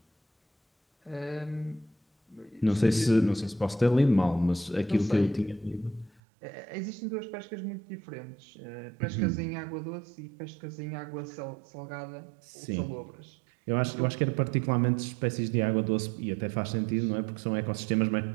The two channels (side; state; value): left; drops out; at 6.2 s